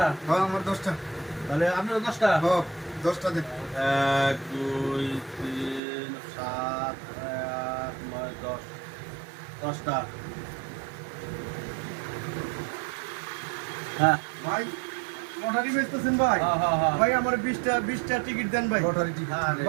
হ্যাঁ আমার 10টা। তাহলে আপনিও 10টা? হ্যাঁ 10টা দেন। 1 2 3 7 8 9 10 10টা। হ্যাঁ ভাই লটারি বেচতেছেন ভাই? হ্যাঁ হ্যাঁ হ্যাঁ। ভাই আমার 20টা টিকিট দেন ভাই। লটারি টিকিট আরে।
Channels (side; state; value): left; drops out; at 5.8 s